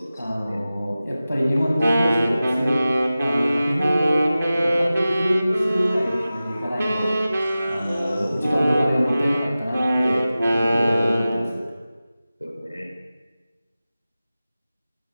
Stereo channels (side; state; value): both; inverted; correlation -0.95